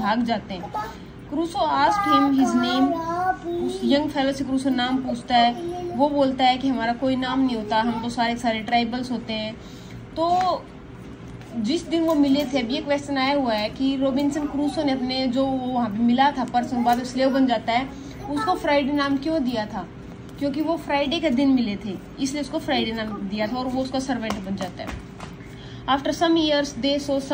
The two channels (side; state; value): both; identical; correlation 1.00